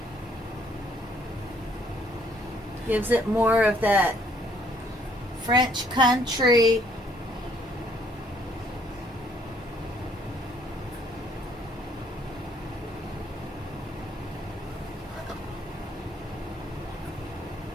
Gives it more of that French country.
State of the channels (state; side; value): normal; both; correlation 0.65